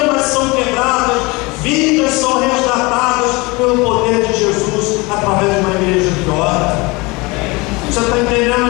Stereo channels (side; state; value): right; quieter; 24.8 dB